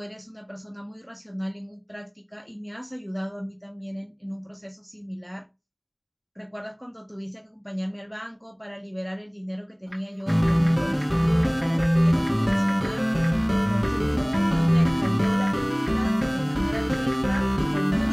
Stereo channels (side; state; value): both; identical; correlation 1.00